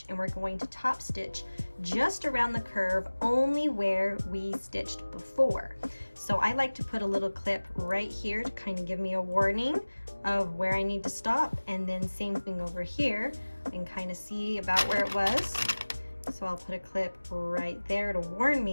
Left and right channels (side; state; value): both; inverted; correlation -1.00